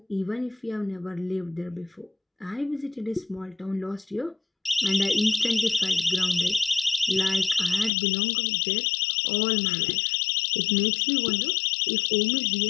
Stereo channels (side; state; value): right; drops out; at 7.9 s